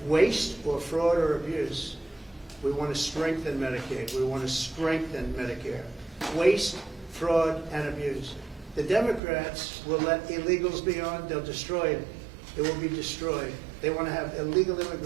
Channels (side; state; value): left; drops out; at 9.2 s